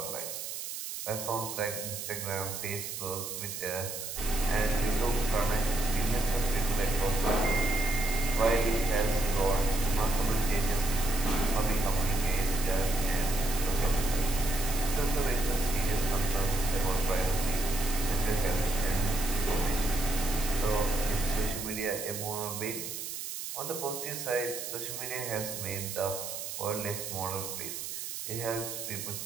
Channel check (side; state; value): right; noise; hiss, 6 dB below the sound